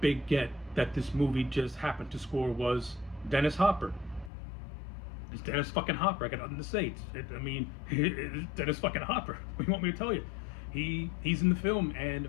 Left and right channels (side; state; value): right; drops out; at 4.3 s